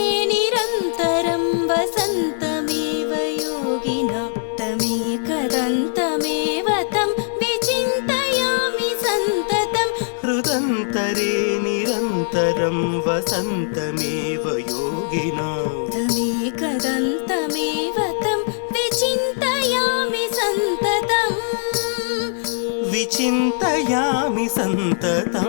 निरन्तरं वसन्तमेव योगिना तमेकदन्तमेव तं विचिन्तयामि सन्ततं हृदन्तरे निरन्तरं वसन्तमेव योगिना तमेकदन्तमेव तं विचिन्तयामि सन्ततम् विचिन्तयामि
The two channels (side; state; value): right; silent; 65 dB below the other